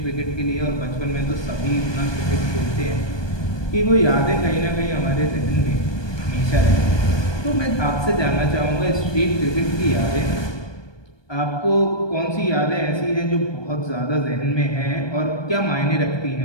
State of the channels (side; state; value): right; late; 1.2 ms